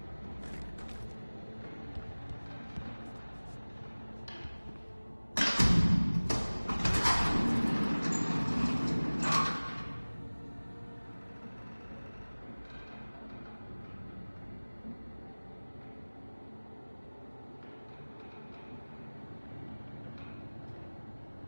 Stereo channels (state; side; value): inverted; both; correlation -1.00